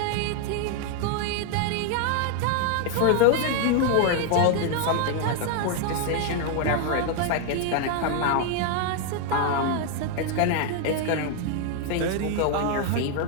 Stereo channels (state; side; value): different; both; correlation 0.00